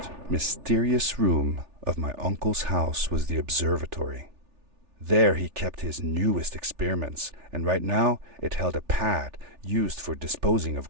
mysterious room of my uncle's house was the observatory. There he kept his newest experiments, and right now it held a pad used for disposing of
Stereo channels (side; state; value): left; late; 3.4 ms